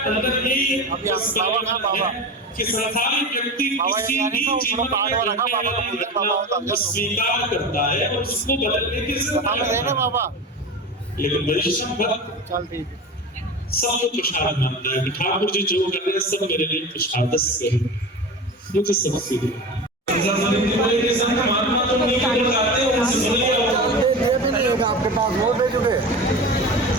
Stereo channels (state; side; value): normal; both; correlation 0.29